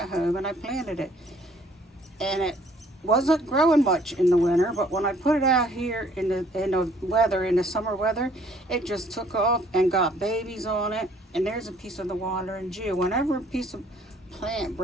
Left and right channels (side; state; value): both; normal; correlation 0.60